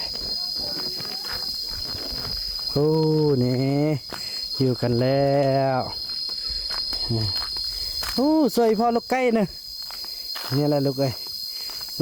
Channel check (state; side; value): identical; both; correlation 1.00